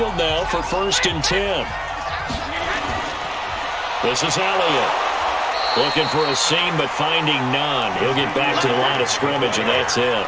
now for 1st and 10. This is Elliott. Looking for a seam, but finding none. He'll get back to the line of scrimmage, and that's it.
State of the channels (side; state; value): both; identical; correlation 1.00